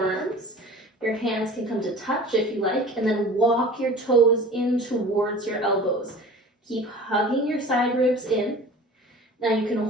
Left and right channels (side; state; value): both; normal; correlation 0.42